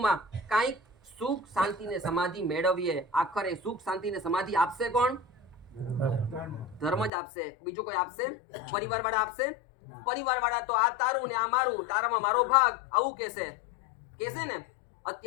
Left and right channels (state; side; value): drops out; right; at 7.1 s